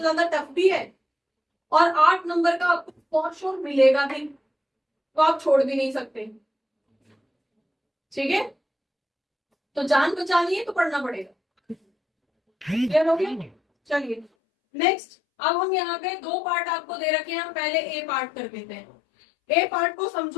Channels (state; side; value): drops out; right; at 14.3 s